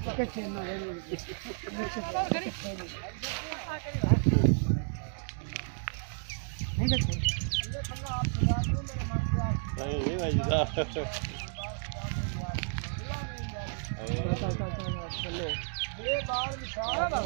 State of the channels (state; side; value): silent; left; digital silence